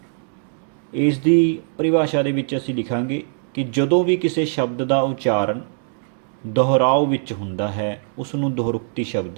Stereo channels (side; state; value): left; silent; digital silence